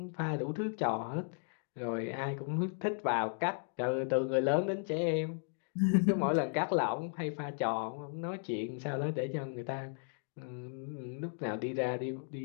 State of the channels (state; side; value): silent; right; 54 dB below the other